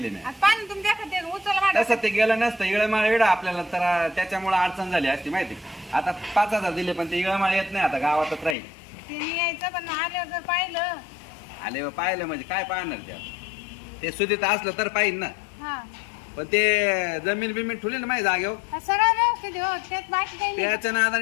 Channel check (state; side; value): drops out; right; at 8.6 s